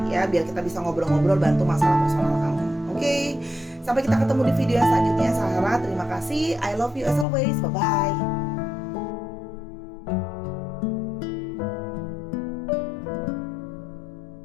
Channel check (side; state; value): right; drops out; at 7.2 s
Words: ya, biar kita bisa ngobrol-ngobrol, bantu masalah personal kamu. Oke, sampai kita ketemu di video yang selanjutnya Sahara. Terima kasih, I love you as always, bye-bye.